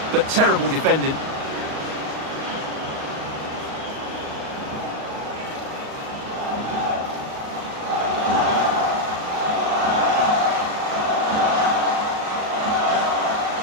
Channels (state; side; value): late; left; 38 ms